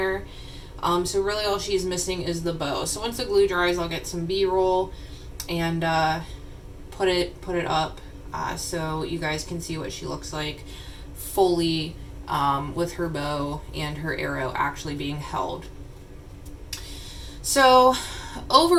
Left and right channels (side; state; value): both; identical; correlation 1.00